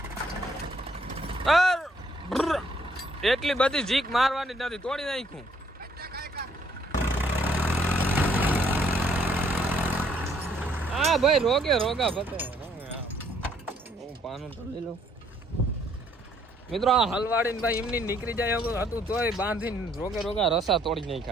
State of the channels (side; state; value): both; normal; correlation 0.66